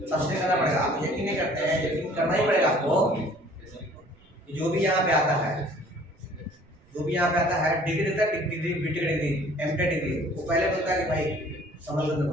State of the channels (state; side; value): noise; right; rumble, 29 dB below the sound